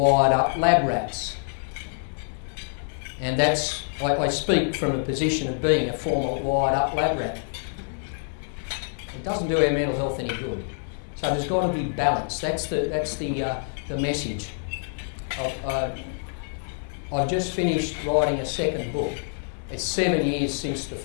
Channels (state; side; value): silent; right; digital silence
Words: up lab rats. And that's, I speak from a position of being a former wired up lab rat. It doesn't do our mental health any good. So there's got to be balance. That's the message. I've just finished writing a second book. It's 7 years since the